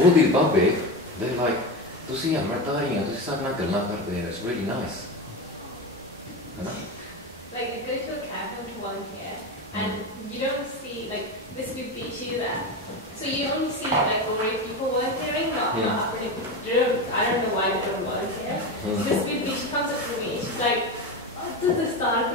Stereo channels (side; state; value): both; normal; correlation 0.20